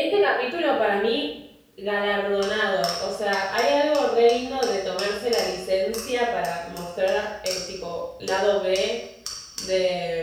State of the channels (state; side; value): identical; both; correlation 1.00